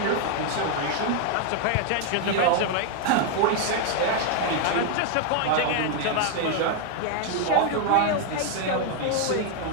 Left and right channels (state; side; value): different; both; correlation 0.00